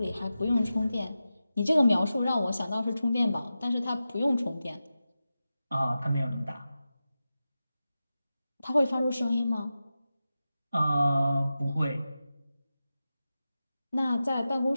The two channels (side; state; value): both; inverted; correlation -0.93